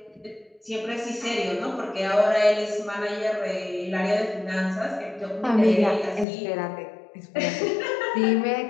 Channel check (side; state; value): right; drops out; at 6.2 s